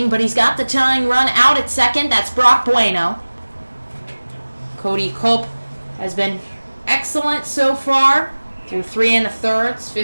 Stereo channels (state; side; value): inverted; both; correlation -1.00